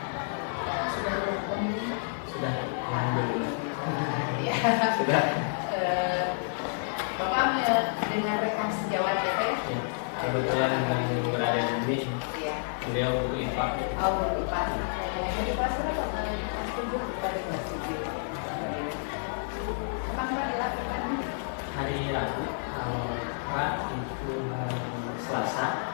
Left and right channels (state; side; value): silent; right; 58 dB below the other